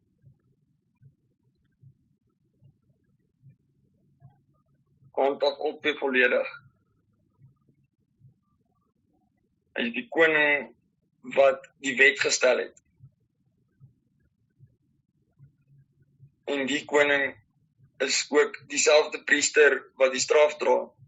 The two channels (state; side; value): identical; both; correlation 1.00